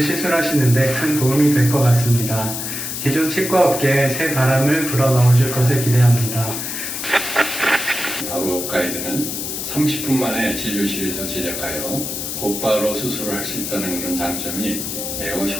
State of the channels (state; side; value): noise; left; hiss, 5 dB below the sound